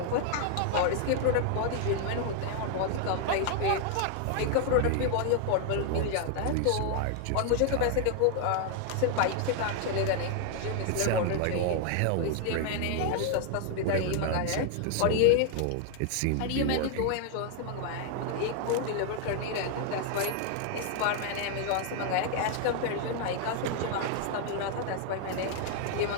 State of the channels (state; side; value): different; both; correlation 0.00